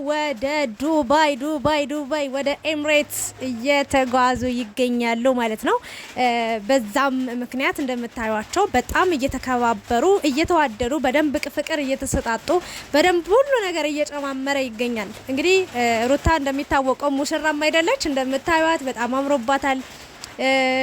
ወደ ዱባይ ወደ ኤምሬትስ እየተጓዙ ይገኛሉ ማለት ነው። በዛም ምክንያት እንደምታዩቸው በጣም እየተከባበሩ እየተዋደዱ በደንብ ፍቅር እየተሰጣጡ በደንብ ሁሉ ነገር እየጨማመረ ይገኛል። እንግዲህ ሩታ እንደሚታወቀው ሙሽራም አይደለች፣ እንደምታዩት በጣም አምሮባታል።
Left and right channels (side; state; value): both; identical; correlation 1.00